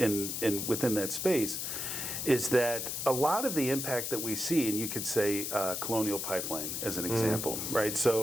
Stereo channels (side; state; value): left; noise; hiss, 3 dB below the sound